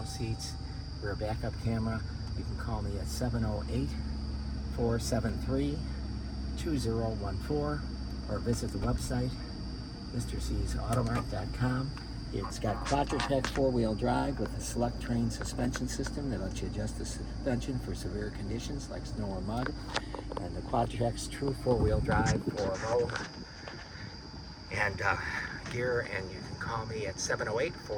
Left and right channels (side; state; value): both; identical; correlation 1.00